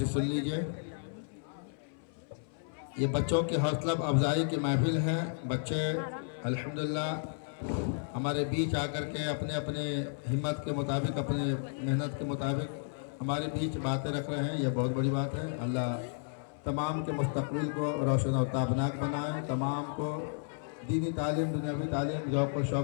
سن لیجئے. یہ بچوں کی حوصلہ افزائی کی محفل ہے. بچے الحمدللہ ہمارے بیچ آ کر کے اپنے اپنے ہمت کے مطابق اپنے محنت کے مطابق ہمارے بیچ باتیں رکھ رہے ہیں. یہ بہت بڑی بات ہے. اللہ تمام کے مستقبل کو روشن و تابناک بنائے. تمام کو دینی تعلیم دنیاوی تعلیم ذوق و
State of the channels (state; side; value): silent; right; 56 dB below the other